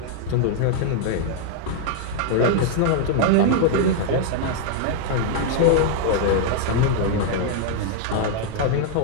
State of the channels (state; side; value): different; both; correlation 0.00